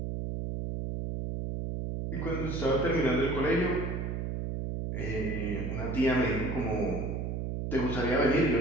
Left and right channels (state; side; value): noise; right; hum, 3 dB below the sound